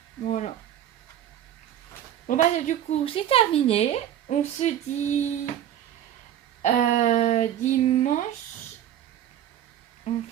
Voilà. Bon bah du coup, c'est terminé. On se dit dimanche. On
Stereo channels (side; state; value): left; quieter; 10.9 dB